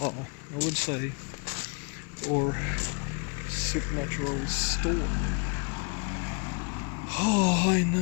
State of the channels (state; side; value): quieter; right; 33.9 dB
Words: would say, or supernatural story. Oh, I